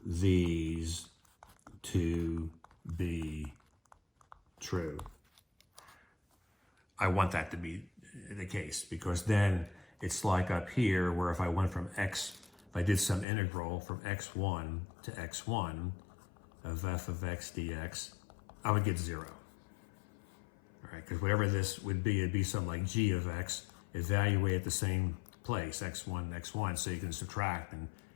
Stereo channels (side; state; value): right; drops out; at 13.2 s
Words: these to be true. I want that to be the case, because then it's like up here where if I went from x, if I did some integral from x1 to x1 of f of x dx, I would get 0. All right, because whatever this would be, it'd be something like g of x, evaluate at the same place, x1, x1, so you can subtract and